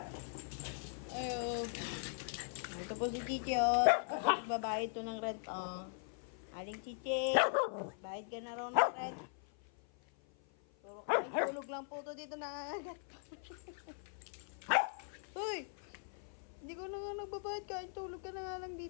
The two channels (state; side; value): silent; right; 51 dB below the other